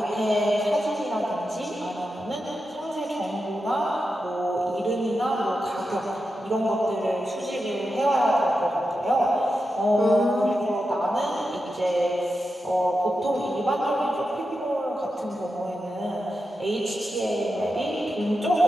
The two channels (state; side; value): normal; both; correlation 0.89